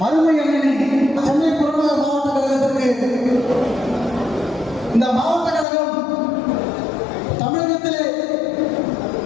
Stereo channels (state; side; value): drops out; right; at 5.7 s